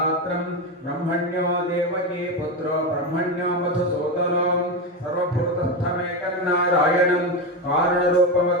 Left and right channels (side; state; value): both; normal; correlation 0.15